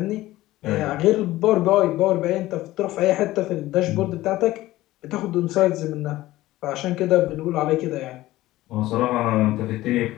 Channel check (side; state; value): right; quieter; 16.7 dB